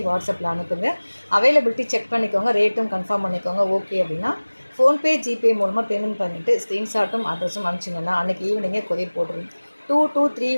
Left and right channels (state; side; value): inverted; both; correlation -1.00